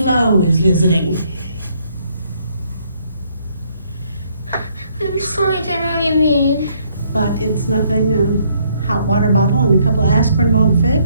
is visiting. I'm sorry, I don't know what you mean. But it's nothing a hot water bottle and a couple of aspirin won't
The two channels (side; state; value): both; inverted; correlation -0.69